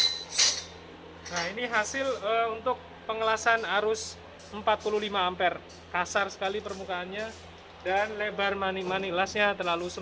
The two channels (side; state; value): both; identical; correlation 1.00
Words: Nah, ini hasil untuk pengelasan arus 45 ampere. Kasar sekali permukaannya dan lebar mani lasnya terlalu